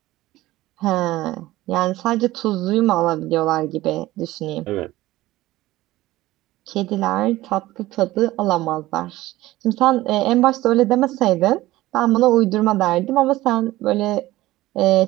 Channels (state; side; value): quieter; left; 17.1 dB